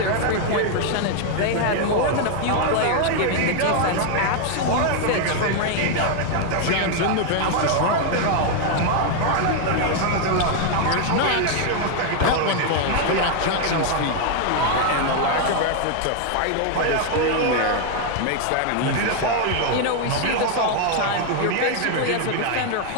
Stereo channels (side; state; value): both; different; correlation 0.00